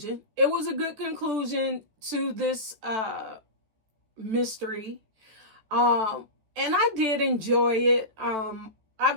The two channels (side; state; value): left; late; 14 ms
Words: It was a good conclusion to this mystery. And I did enjoy it.